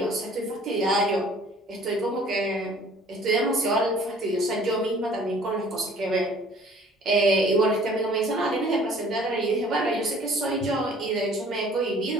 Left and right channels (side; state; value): both; normal; correlation 0.53